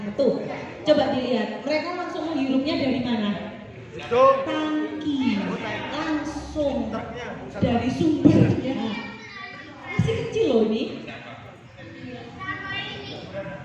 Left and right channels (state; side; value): identical; both; correlation 1.00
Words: itu. Coba dilihat, mereka langsung menghirupnya dari mana? Tangki, langsung dari sumbernya. Masih kecil loh ini.